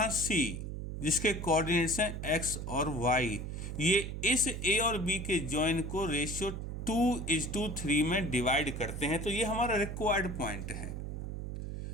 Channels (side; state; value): right; noise; hum, 6 dB below the sound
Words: सी जिसके कोऑर्डिनेट्स हैं एक्स और वाई। ये इस ए और बी के जॉइन को रेशियो 2:3 में डिवाइड करते हैं। तो ये हमारा रिक्वायर्ड पॉइंट है।